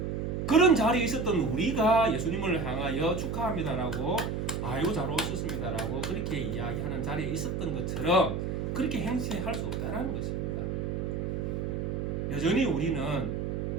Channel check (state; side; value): noise; right; hum, 2 dB below the sound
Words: 그런 자리에 있었던 우리가 예수님을 향하여 축하합니다라고 아유 잘 오셨습니다라고 그렇게 이야기하는 자리에 있었던 것처럼 그렇게 행세할 수 없다는 것입니다. 여전히 우리는